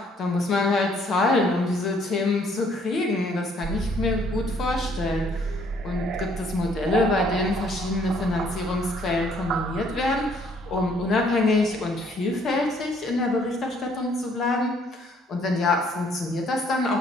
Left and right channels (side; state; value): both; normal; correlation 0.64